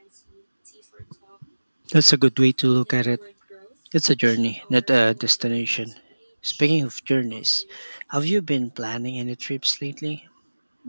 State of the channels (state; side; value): inverted; both; correlation -1.00